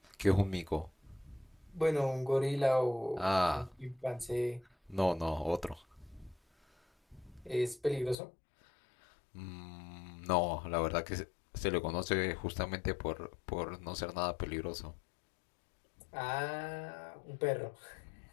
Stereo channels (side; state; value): right; drops out; at 8.2 s